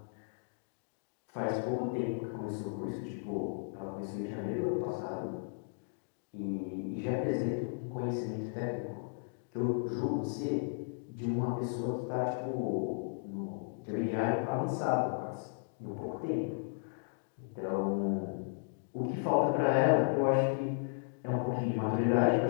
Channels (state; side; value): silent; right; digital silence